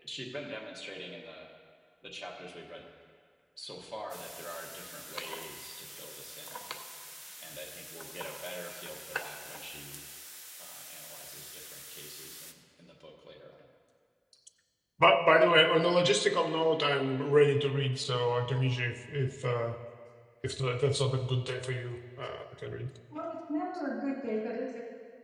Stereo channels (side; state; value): both; identical; correlation 1.00